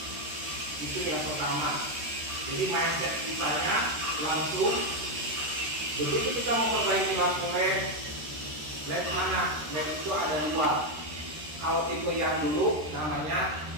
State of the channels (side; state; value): left; late; 13 ms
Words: Itu yang pertama. Jadi mindset kitanya langsung, begitu kita memperbaiki lampu LED mana? LED itu ada dua. Kalau tipe yang dulu namanya